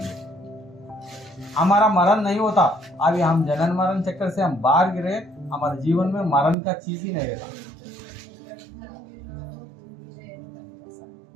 हमारा मरण नहीं होता, अभी हम जनन मरण चक्कर से हम बाहर गिरे, हमारे जीवन में मरण का चीज ही नहीं रहता।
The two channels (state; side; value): drops out; left; at 6.6 s